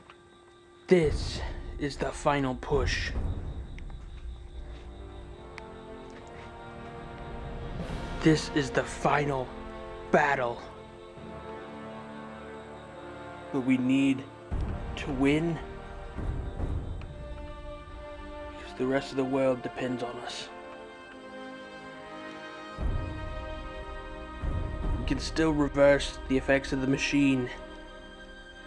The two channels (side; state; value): both; identical; correlation 1.00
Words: is the final push. This is the final battle. But we need to win because the rest of the world depends on us. We can still reverse the effects of the machine.